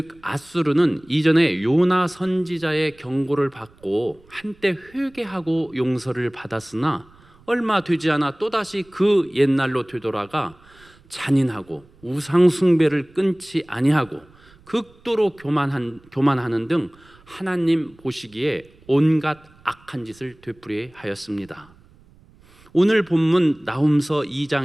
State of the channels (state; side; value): noise; right; rumble, 28 dB below the sound